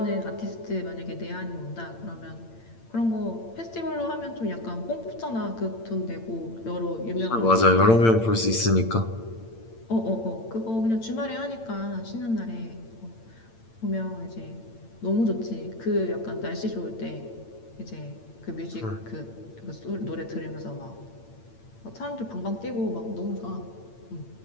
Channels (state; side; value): late; right; 8.9 ms